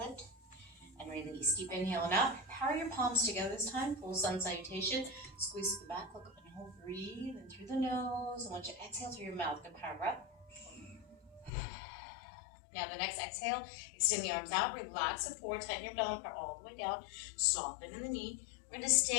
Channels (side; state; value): right; drops out; at 11.5 s